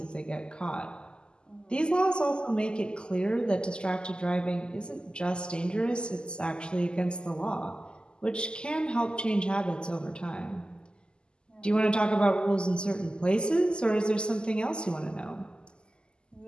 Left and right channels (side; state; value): right; late; 0.048 ms